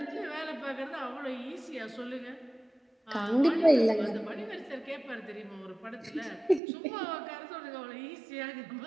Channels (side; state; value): left; drops out; at 6.6 s